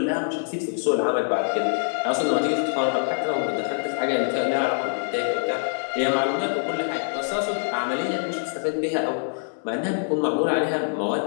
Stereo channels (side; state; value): right; silent; 62 dB below the other